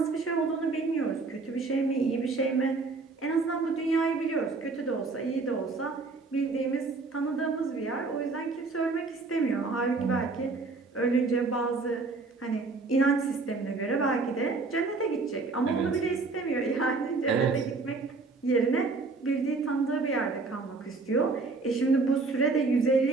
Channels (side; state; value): left; quieter; 3.9 dB